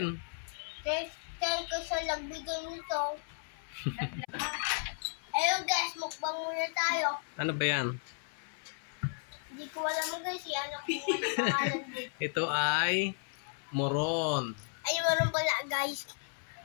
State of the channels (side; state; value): right; silent; 55 dB below the other